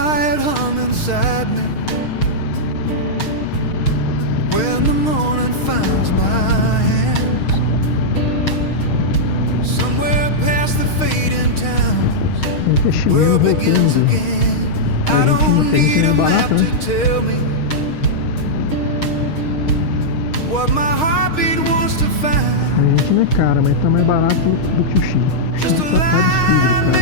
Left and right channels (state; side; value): late; right; 6.4 ms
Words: hum inside me when the morning finds my hands, somewhere past the fading towns, where Investimento begins voltando. again. I don't need a map to tell me what my heartbeat wants to A find. gente não é cara, mas tá mais barato do que o Chile. O Just Chile a tá line